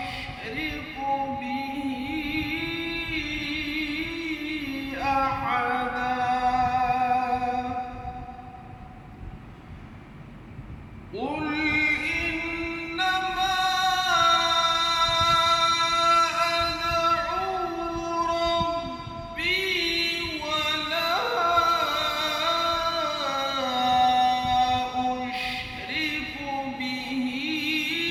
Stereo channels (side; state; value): both; identical; correlation 1.00